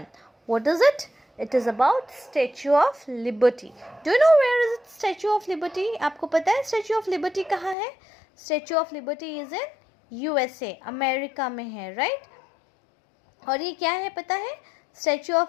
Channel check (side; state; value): right; drops out; at 7.8 s